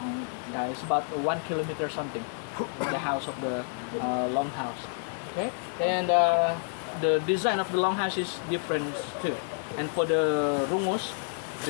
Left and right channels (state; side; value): silent; right; 59 dB below the other